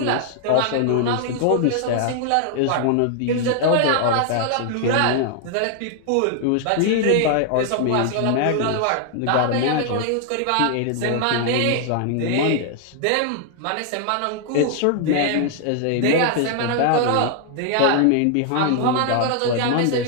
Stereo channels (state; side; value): different; both; correlation 0.00